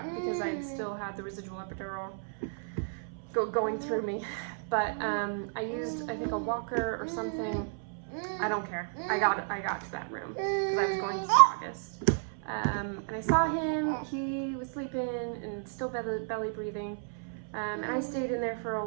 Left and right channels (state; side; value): silent; left; 56 dB below the other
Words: because I still had the residual epidural going through me. But I used, I think, a walker or something. I don't care. I got to that room because I was going to see August. And I saw him, he was sleeping and still belly breathing. And I stayed in there for a